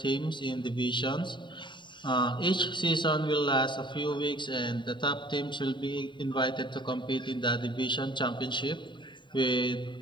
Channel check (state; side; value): late; right; 0.23 ms